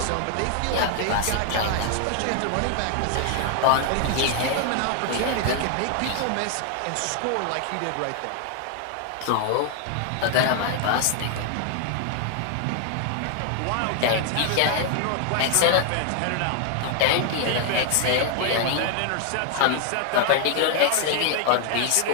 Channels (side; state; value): both; different; correlation 0.00